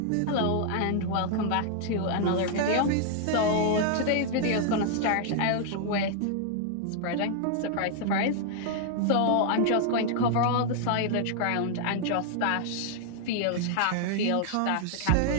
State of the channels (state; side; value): different; both; correlation -0.01